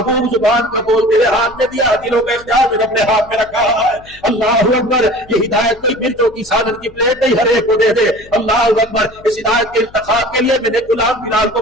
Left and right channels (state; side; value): noise; left; hum, 25 dB below the sound